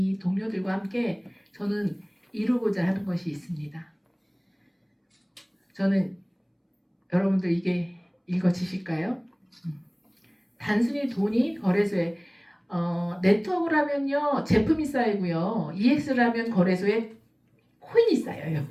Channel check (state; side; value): identical; both; correlation 1.00